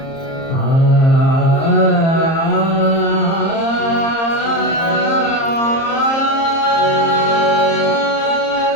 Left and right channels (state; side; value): late; right; 30 ms